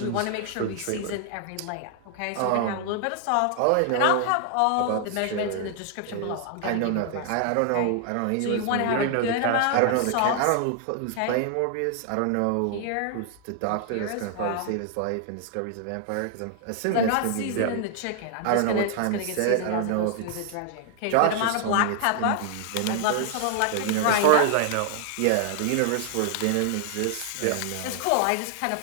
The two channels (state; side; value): different; both; correlation 0.00